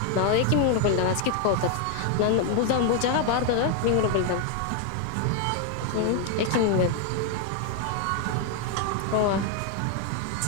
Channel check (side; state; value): both; different; correlation 0.01